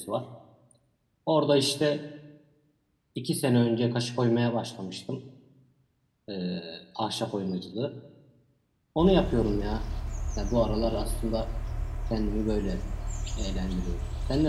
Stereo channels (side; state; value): both; identical; correlation 1.00